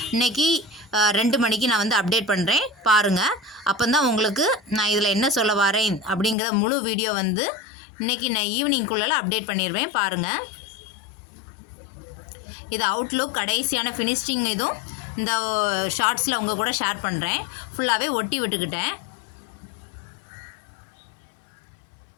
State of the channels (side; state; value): right; drops out; at 6.4 s